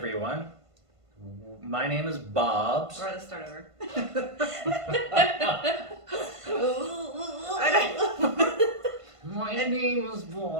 My name is Bobs. Or let's start over. My name is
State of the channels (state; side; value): late; left; 1.5 ms